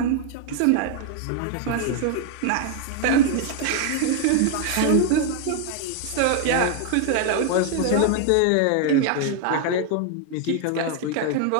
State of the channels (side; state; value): both; different; correlation 0.00